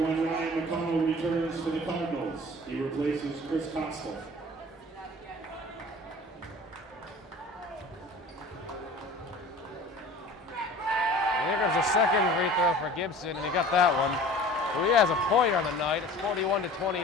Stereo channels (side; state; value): both; normal; correlation 0.43